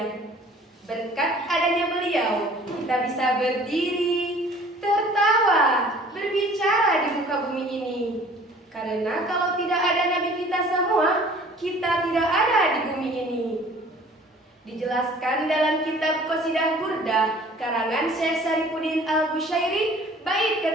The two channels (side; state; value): both; normal; correlation 0.51